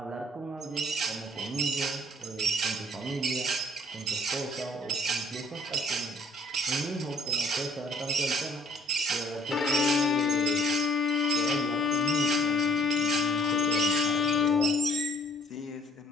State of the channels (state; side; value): normal; both; correlation 0.59